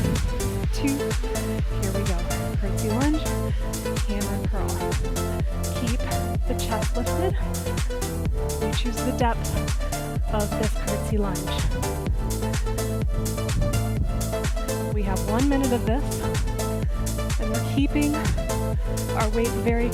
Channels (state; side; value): identical; both; correlation 1.00